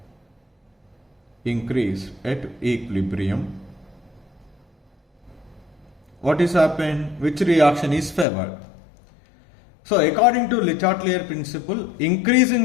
What is happened? Which reaction is favored? So according to Le Chatelier principle,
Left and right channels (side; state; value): right; drops out; at 8.2 s